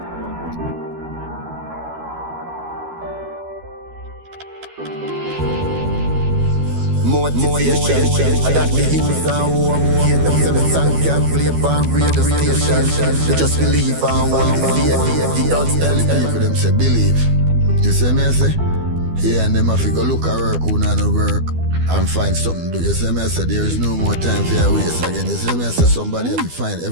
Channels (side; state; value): left; late; 12 ms